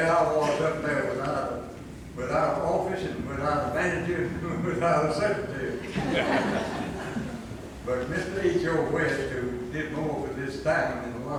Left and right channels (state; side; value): identical; both; correlation 1.00